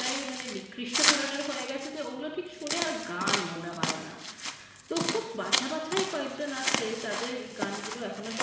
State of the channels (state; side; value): identical; both; correlation 1.00